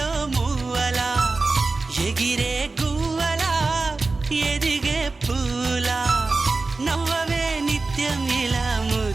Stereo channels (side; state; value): left; quieter; 3.7 dB